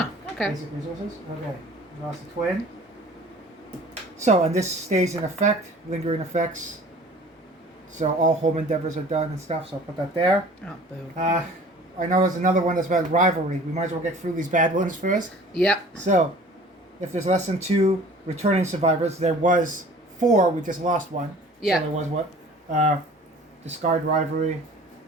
okay. Basic resources. Okay. We lost a twin. So, and this stays in effect, lingering effects. So all home endeavors are done and stuff. So I'll put that there. Oh, boo. I know there's another one that's about rivalry. We might as well get through these bad ones first. Yep. So, if there's less than 2 returning survivors, there was 4. We just lost 1. Yeah. So there was what? Discard rivalry.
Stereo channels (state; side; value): normal; both; correlation 0.47